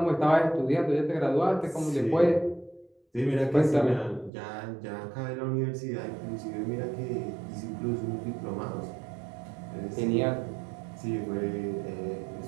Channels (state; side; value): drops out; left; at 4.3 s